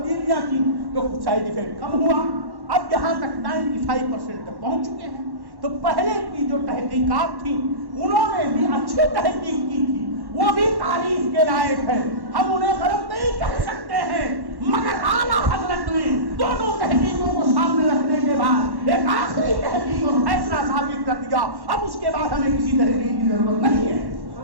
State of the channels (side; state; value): left; late; 1.1 ms